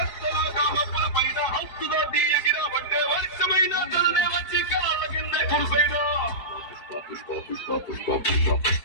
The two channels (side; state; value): right; late; 4.7 ms